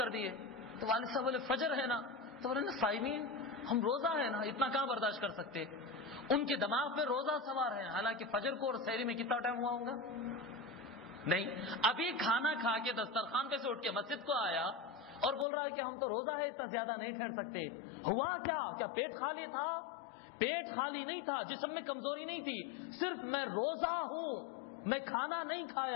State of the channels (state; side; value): drops out; right; at 15.5 s